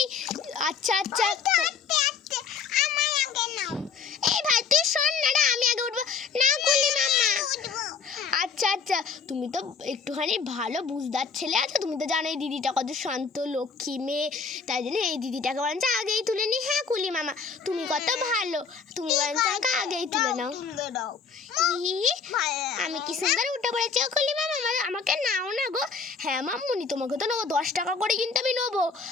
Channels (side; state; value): right; quieter; 5.5 dB